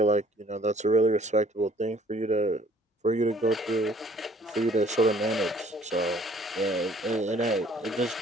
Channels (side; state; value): both; normal; correlation 0.57